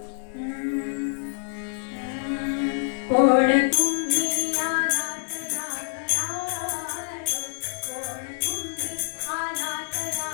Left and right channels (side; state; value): right; silent; digital silence